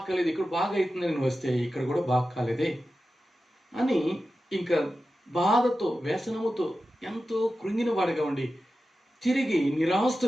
కాలేదు, ఇక్కడ బాగా అవుతుందని వస్తే ఇక్కడ కూడా బాగు కాలేదే అని ఇంకా బాధతో, వ్యసనముతో ఎంతో కృంగిన వాడిగా ఉండి తిరిగి నిరాశతో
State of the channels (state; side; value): normal; both; correlation 0.93